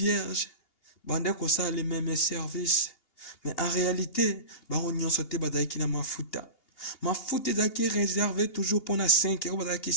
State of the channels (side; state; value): right; late; 2.8 ms